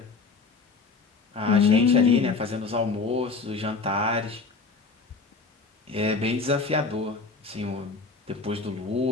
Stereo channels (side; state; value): right; quieter; 4.3 dB